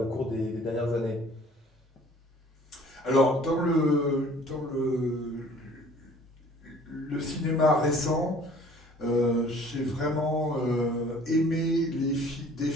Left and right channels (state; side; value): normal; both; correlation 0.53